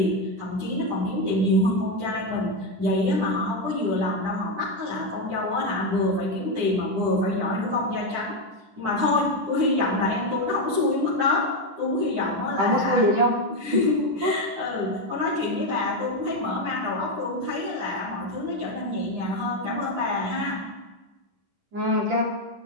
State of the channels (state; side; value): late; left; 9.9 ms